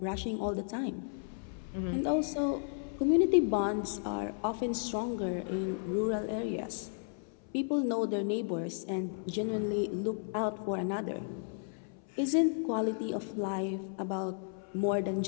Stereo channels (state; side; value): silent; right; 55 dB below the other